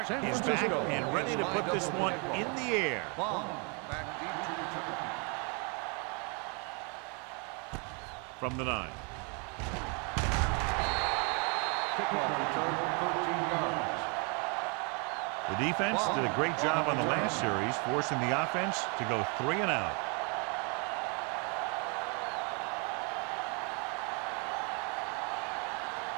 is back and ready to put this one in the air. Back deep to return. From the 9. Kickoff return, 13 yards. The defense did a great job on the last series, forcing the offense to go 3 and out.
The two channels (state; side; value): quieter; left; 34.6 dB